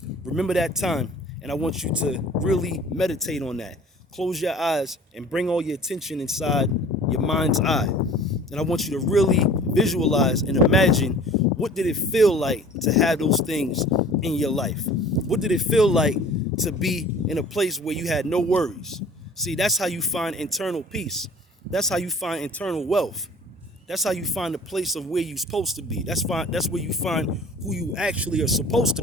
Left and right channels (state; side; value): normal; both; correlation 0.46